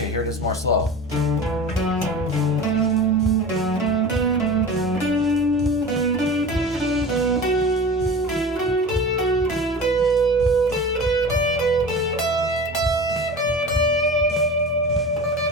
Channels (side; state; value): both; normal; correlation 0.34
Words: here it is more slow.